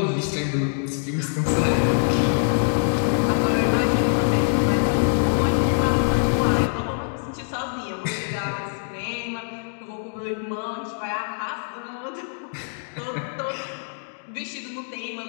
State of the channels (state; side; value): silent; right; digital silence